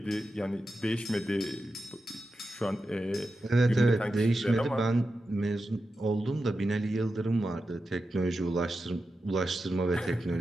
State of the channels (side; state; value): both; normal; correlation 0.90